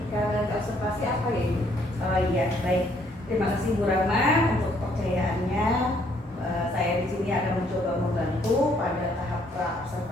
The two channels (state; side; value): normal; both; correlation 0.67